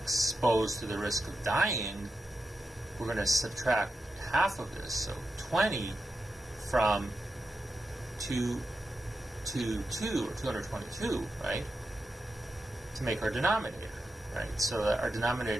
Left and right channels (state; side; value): normal; both; correlation 0.89